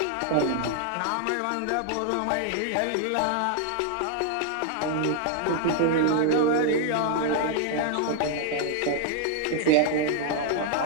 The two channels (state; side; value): different; both; correlation 0.00